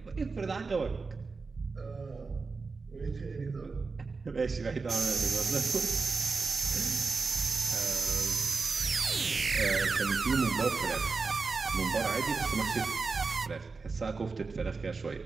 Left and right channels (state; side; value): quieter; left; 4.3 dB